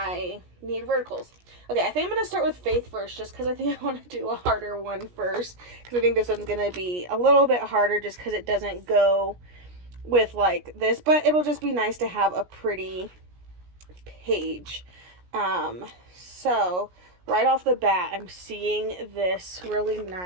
need verticals. Okay, I think I'm going to start with Faith first just because I think I want to do a harder one first, because I think this one's going to be a little bit harder just because it doesn't go with like this, but it'll just be nice to have a pretty page. So right off the bat, I'm seeing this really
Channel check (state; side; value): late; left; 17 ms